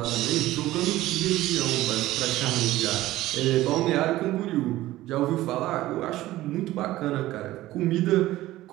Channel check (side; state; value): left; quieter; 16.2 dB